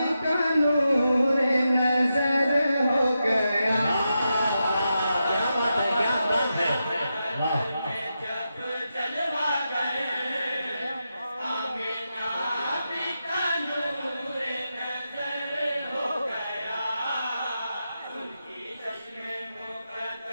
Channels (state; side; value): inverted; both; correlation -0.88